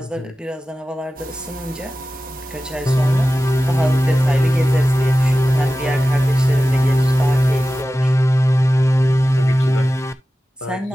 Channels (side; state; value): both; normal; correlation 0.95